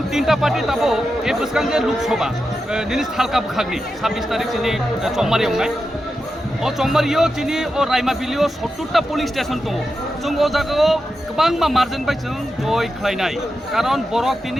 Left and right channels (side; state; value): both; normal; correlation 0.89